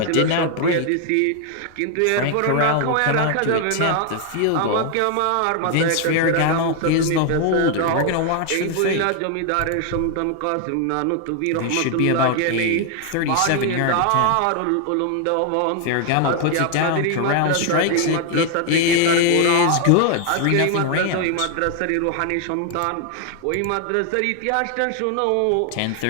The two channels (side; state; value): both; different; correlation 0.00